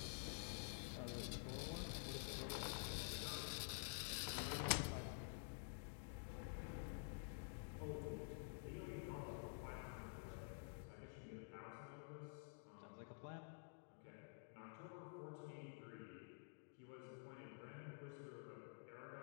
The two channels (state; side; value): silent; right; digital silence